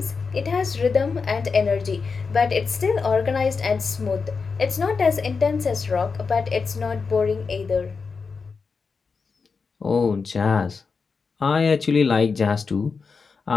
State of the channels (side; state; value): right; quieter; 5.0 dB